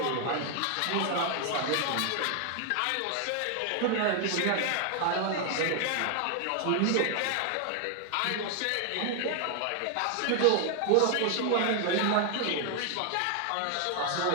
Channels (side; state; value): both; different; correlation 0.00